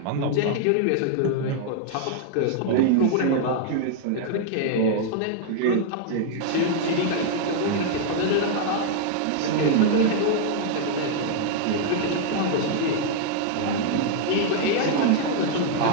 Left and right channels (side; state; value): both; different; correlation 0.00